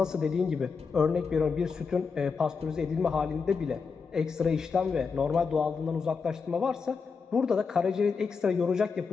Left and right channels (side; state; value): right; quieter; 5.3 dB